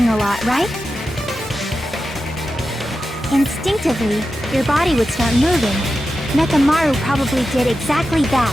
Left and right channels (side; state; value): both; normal; correlation 0.91